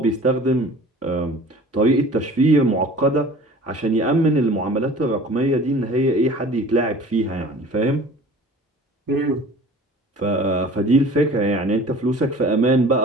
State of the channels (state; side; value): normal; both; correlation 0.45